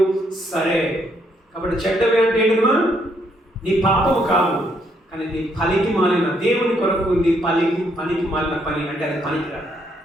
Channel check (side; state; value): both; normal; correlation 0.73